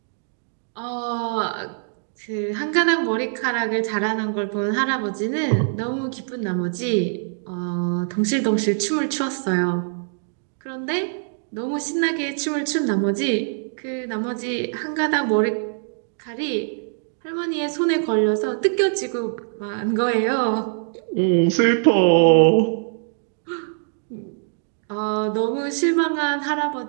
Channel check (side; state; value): left; silent; digital silence